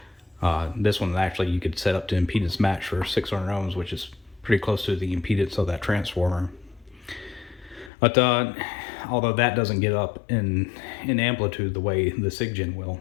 This one actually you could set up to impedance match for 600 ohms, which is pretty close to the impedance of that transformer. But although that doesn't get up in amplitude the way the SIGGEN will,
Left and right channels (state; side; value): drops out; right; at 7.9 s